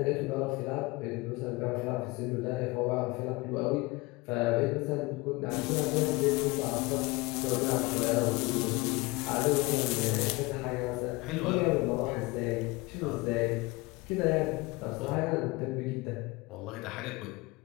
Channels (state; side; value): quieter; right; 23.6 dB